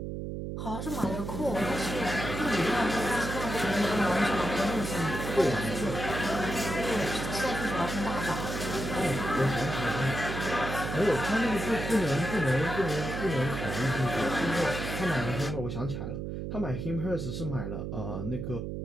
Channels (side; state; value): right; noise; hum, 5 dB below the sound